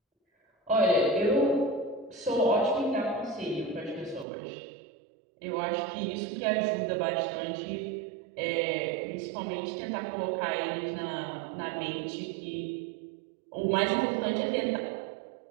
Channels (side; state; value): left; drops out; at 4.2 s